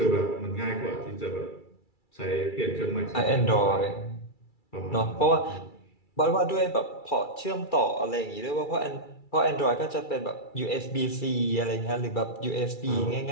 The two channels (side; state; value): right; late; 2.3 ms